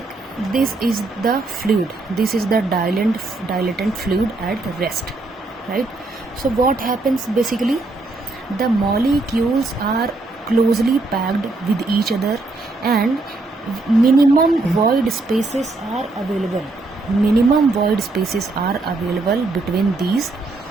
this is the fluid, this is the dilatant fluid at rest, right? So what happens basically? The molecules are closely packed with each other and minimum void spaces are available. Minimum void spaces are available between this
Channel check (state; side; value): quieter; left; 3.2 dB